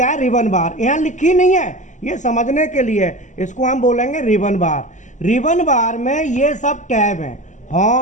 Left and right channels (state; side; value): late; right; 0.36 ms